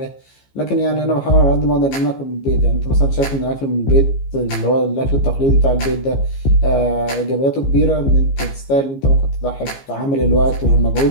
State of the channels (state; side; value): late; right; 15 ms